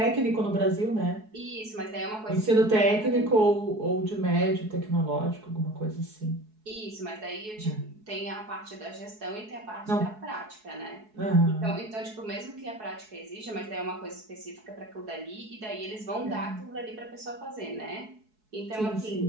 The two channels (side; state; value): left; late; 4.7 ms